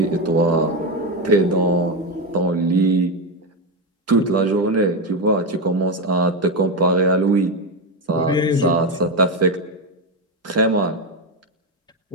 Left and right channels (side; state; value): both; normal; correlation 0.11